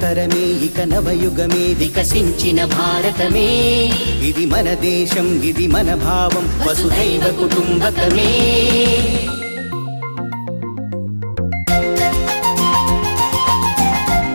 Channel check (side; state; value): both; inverted; correlation -1.00